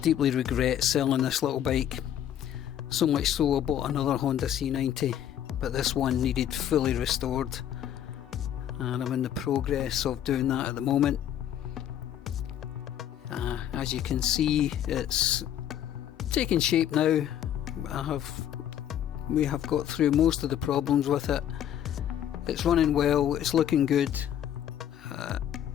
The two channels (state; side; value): quieter; right; 10.5 dB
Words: regret selling this little bike, so much so I bought another Honda C90, but this one needed fully restored, and I'm in the progress of doing that at the moment. As you can see, it's taking shape now. We have got through most of the problems with it. It's running well, it's looking good.